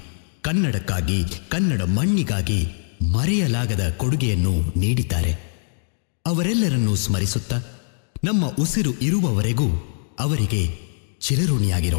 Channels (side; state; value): right; silent; digital silence